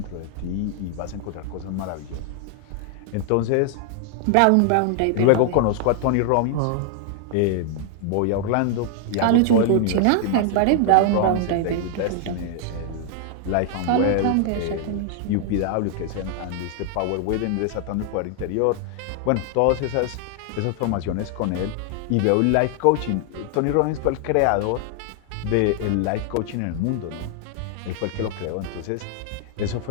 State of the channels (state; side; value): different; both; correlation 0.00